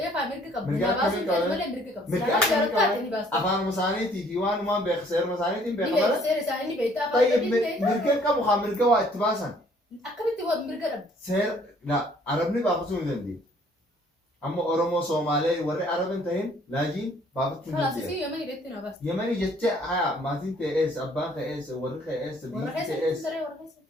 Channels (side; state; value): both; normal; correlation 0.60